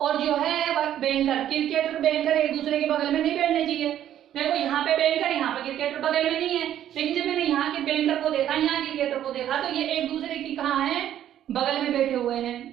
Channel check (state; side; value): quieter; left; 11.2 dB